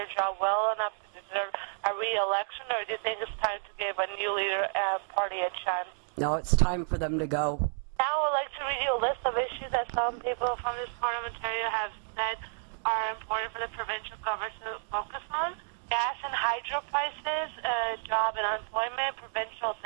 job well enough to deserve a re-election, or do you think it's time to give a new leader and party a chance? No, it's time for them to go. Now I would like to read you a list of issues that some people from this part of Ontario have said are important for the provincial government to focus on. Gas and hydro prices, job and unemployment, provincial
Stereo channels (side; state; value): left; silent; digital silence